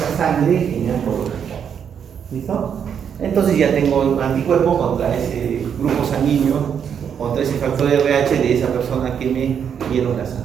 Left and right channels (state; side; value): quieter; left; 7.8 dB